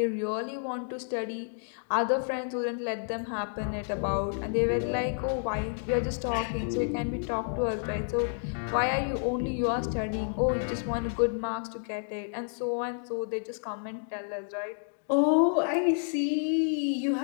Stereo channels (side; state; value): right; silent; digital silence